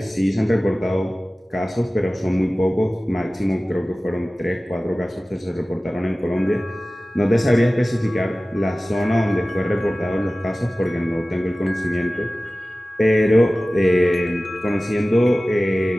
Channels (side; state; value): both; normal; correlation 0.97